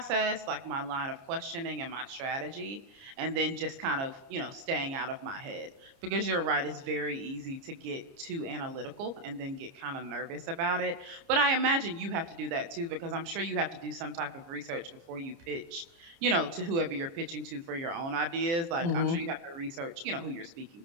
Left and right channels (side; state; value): left; late; 30 ms